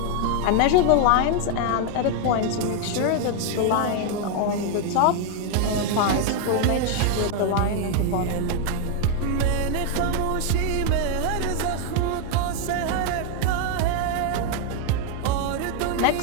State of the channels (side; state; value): both; different; correlation 0.01